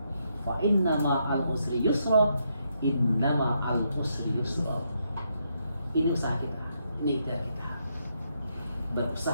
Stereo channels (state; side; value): inverted; both; correlation -0.78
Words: Fa innama al usri yusra, innama al usri yusra. Ini usaha kita, ini ikhtiar kita.